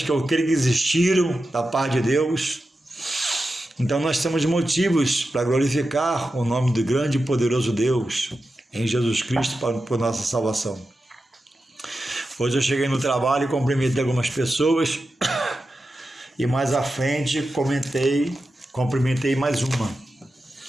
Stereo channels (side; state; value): both; normal; correlation 0.91